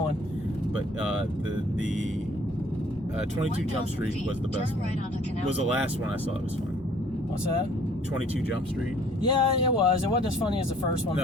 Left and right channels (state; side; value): normal; both; correlation 0.57